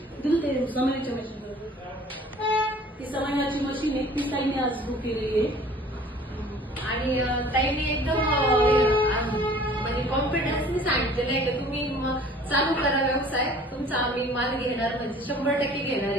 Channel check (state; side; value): normal; both; correlation 0.50